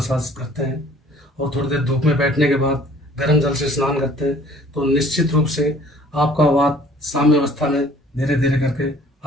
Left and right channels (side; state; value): both; normal; correlation 0.54